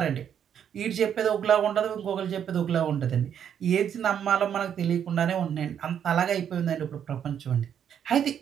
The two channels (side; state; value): left; quieter; 8.8 dB